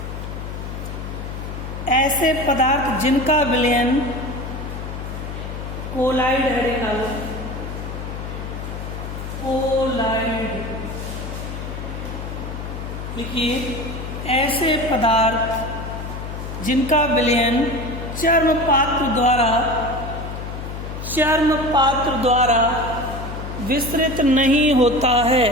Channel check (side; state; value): left; noise; hum, 7 dB below the sound